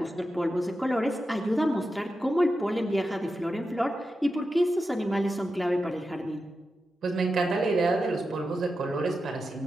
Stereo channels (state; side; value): normal; both; correlation 0.90